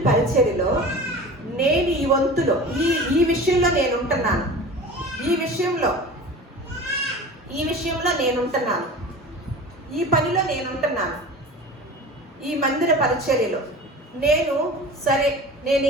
పరిచర్యలో నేను ఈ వంతులో ఈ విషయంలో నేను ఉంటున్నాను, ఈ విషయంలో నేను ఉంటున్నాను, ఈ పనిలో నేను ఉంటున్నాను, ఈ మందిర పరిచర్యలో నేను సరే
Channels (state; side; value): normal; both; correlation 0.36